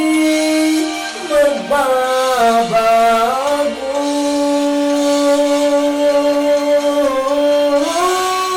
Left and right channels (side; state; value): both; identical; correlation 1.00